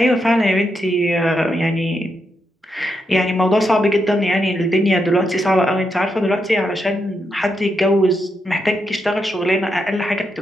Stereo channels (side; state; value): both; normal; correlation 0.82